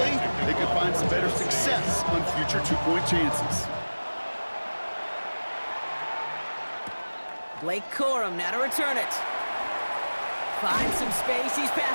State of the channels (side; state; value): both; inverted; correlation -1.00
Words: they can find some better success on future 2-point chances. Blake Corum now to return it. Finds some space. He's